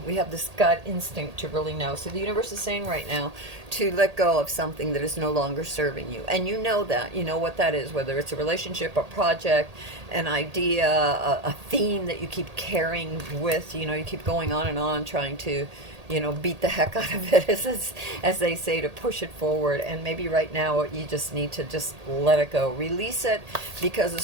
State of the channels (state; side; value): late; left; 1.8 ms